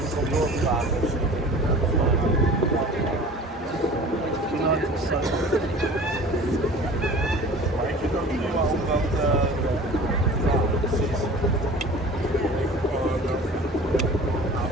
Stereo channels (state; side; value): normal; both; correlation 0.42